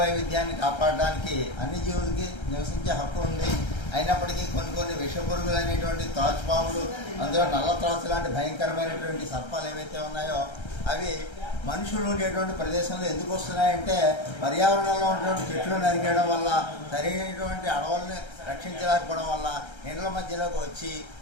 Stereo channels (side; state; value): right; late; 1.3 ms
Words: కాపాడడానికి అన్ని జీవులకి నివసించే హక్కు ఉంది. అయినప్పటికీ కొన్ని విషపురుగులు అనేటువంటి త్రాచుపాములు, అందులో నల్ల త్రాచు లాంటి భయంకరమైనటువంటి సర్పాలు ఏవైతే ఉన్నాయో అవి మనుషులు ఉండేటువంటి ప్రదేశంలో ఎందుకు వస్తున్నాయంటే పర్యావరణంలో ఉన్నటువంటి చెట్లు నరికేయడం వల్ల, సరైనటువంటి అడవుల్ని రక్షించలేకపోవడం వల్ల నీళ్ళ మధ్యలోకి వచ్చి